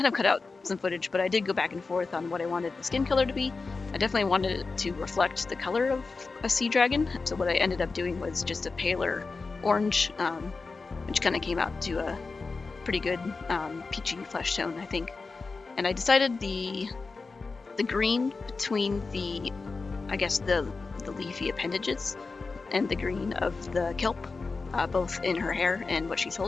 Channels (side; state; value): right; quieter; 4.1 dB